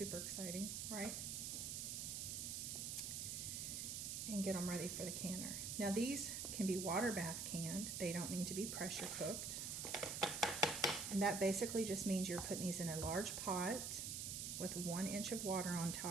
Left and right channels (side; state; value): right; noise; hiss, 3 dB below the sound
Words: exciting, right? And get them ready for the canner. Now these can be water bath canned. They don't need to be pressure cooked. And that basically just means you're putting these in a large pot with 1 inch of water on